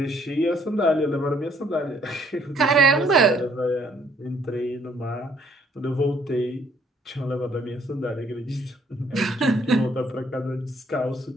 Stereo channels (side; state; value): both; normal; correlation 0.64